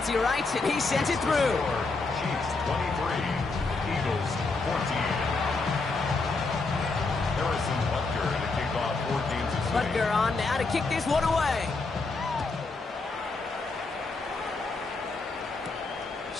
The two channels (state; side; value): quieter; right; 3.8 dB